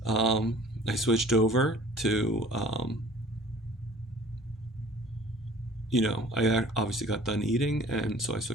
I switched over to, I obviously got done eating, and so I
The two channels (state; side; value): normal; both; correlation 0.50